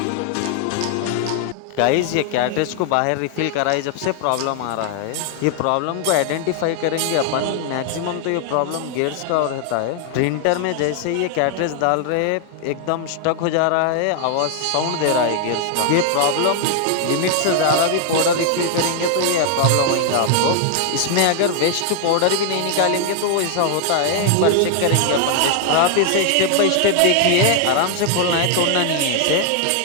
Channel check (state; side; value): different; both; correlation 0.00